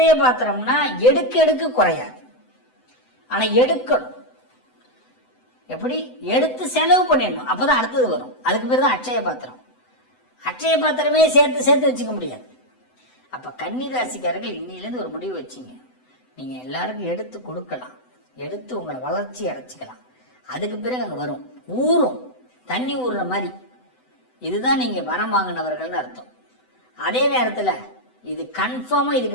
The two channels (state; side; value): late; right; 7.9 ms